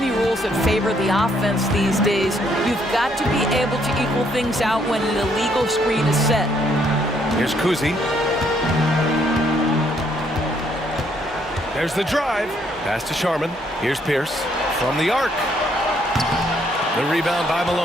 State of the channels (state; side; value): normal; both; correlation 0.69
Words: rules that favor the offense these days. You've got to be able to equal things out when an illegal screen is set. Here's Kuzi. There's the drive. Pass to Sharman. Here's Pierce from the arc. The rebound by